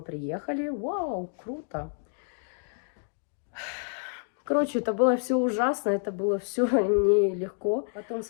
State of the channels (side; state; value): right; silent; 59 dB below the other